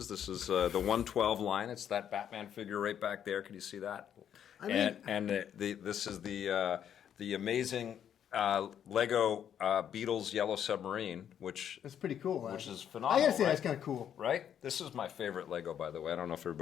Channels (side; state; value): right; quieter; 9.3 dB